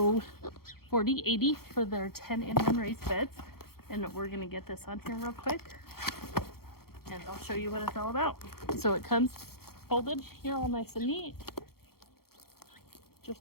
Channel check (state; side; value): late; right; 0.94 ms